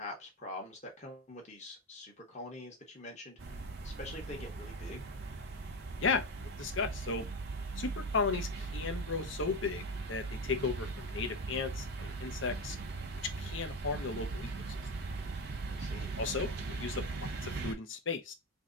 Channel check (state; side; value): normal; both; correlation 0.19